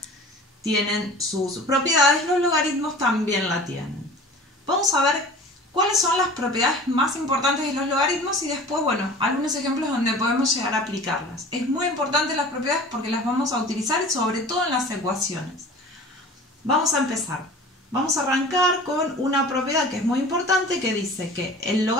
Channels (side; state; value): both; normal; correlation 0.41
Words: tienen sus propiedades, los logaritmos también la tienen. Vamos a ver cuáles son las propiedades más importantes de los logaritmos y después, bueno, algunos ejemplos donde podemos llegar a aplicarlas. Es muy importante las propiedades porque las vamos a utilizar sobre todo en las ecuaciones. Vamos a empezar. Vamos a arrancar con una propiedad que es muy importante que dice que el